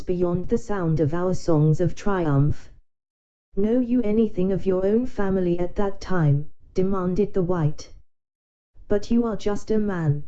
beyond the sound of our songs of triumph. Know you anything of your own family at that time? Demanded the white. But you are just a man,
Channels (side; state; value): both; identical; correlation 1.00